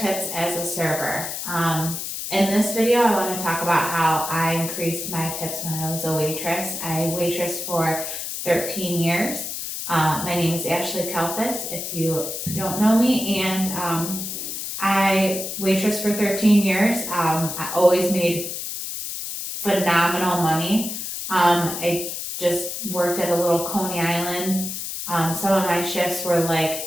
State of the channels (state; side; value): noise; left; hiss, 5 dB below the sound